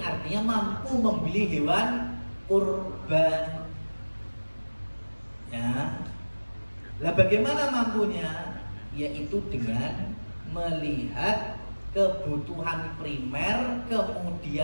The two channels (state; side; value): inverted; both; correlation -1.00